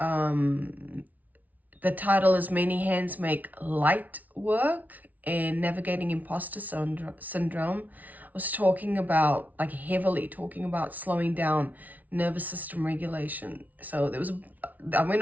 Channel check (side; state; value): left; late; 0.075 ms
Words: title is Many Hands Make Light Work and Navigating Imposter Syndrome, I was talking about, like heavily talking about slowing down, nervous system regulation. So I